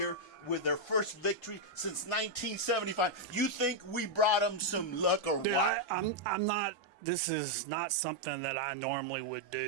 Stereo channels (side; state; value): both; normal; correlation -0.01